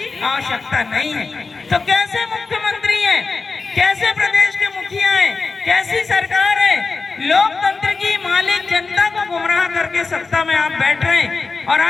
आवश्यकता नहीं है। तो कैसे मुख्यमंत्री हैं, कैसे प्रदेश के मुखिया हैं, कैसी सरकार है, लोकतंत्र की मालिक जनता को गुमराह करके सत्ता में आप बैठ रहे हैं और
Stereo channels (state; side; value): quieter; right; 4.3 dB